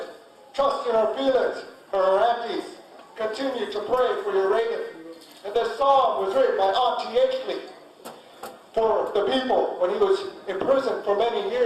Trust in our feelings for our aunties. Continue to pray for your Reagan. And this song was written by Auntie Ashley for the people when he was in prison for many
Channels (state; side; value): identical; both; correlation 1.00